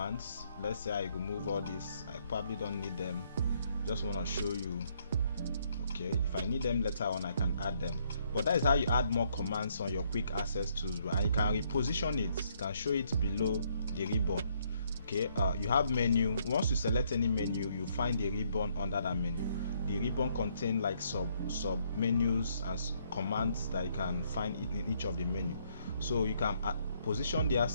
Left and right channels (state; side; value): inverted; both; correlation -0.70